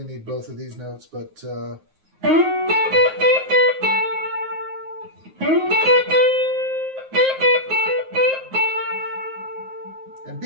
need both of these notes, but and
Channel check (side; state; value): left; late; 9.5 ms